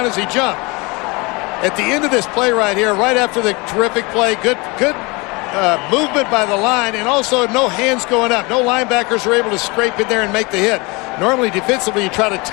as he jumped. At the end of this play right here, right after the terrific play, good movement by the line, and also no hands going up. No linebackers are able to scrape in there and make the hit. Normally, defensively, you try to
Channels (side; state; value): right; quieter; 26.7 dB